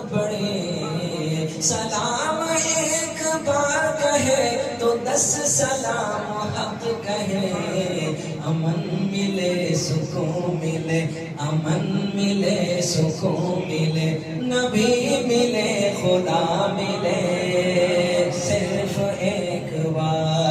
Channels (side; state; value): both; identical; correlation 1.00